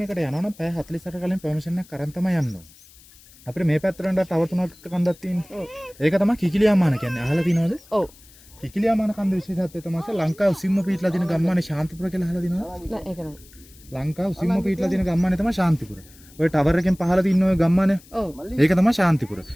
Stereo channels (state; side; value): noise; left; hiss, 24 dB below the sound